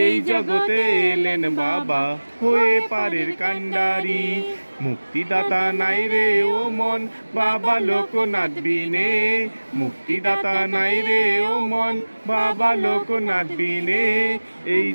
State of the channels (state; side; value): inverted; both; correlation -1.00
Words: এই জগতে এলেন বাবা হয়ে পারের কান্ডারি। মুক্তিদাতা নাই রে ও মন বাবা লোকনাথ বিনে। মুক্তিদাতা নাই রে ও মন বাবা লোকনাথ বিনে। এই